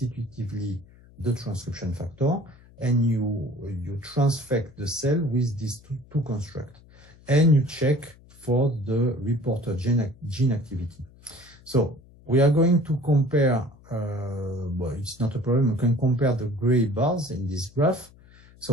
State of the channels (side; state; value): left; noise; hum, 25 dB below the sound